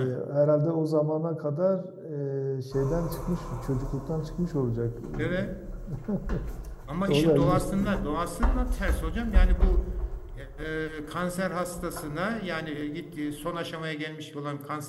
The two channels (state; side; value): identical; both; correlation 1.00